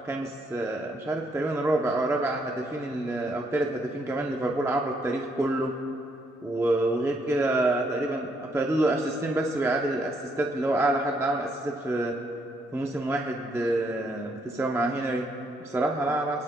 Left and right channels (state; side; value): normal; both; correlation 0.73